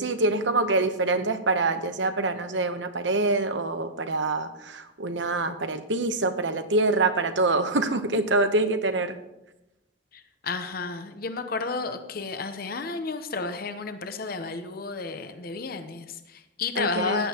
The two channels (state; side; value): normal; both; correlation -0.14